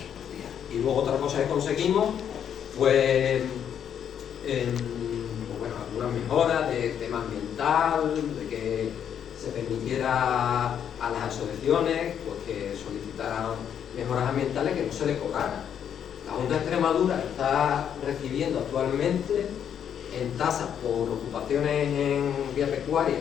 Y luego otra cosa que conseguimos fue bueno, algunas mejoras de tema ambiental, de que se permitiera a las asociaciones pues, que solicitaran mejoras ambientales que no se les cobraran. La Junta de Extremadura está recibiendo actualmente en tasas por ocupaciones en vía pecuaria,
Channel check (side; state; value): right; quieter; 8.8 dB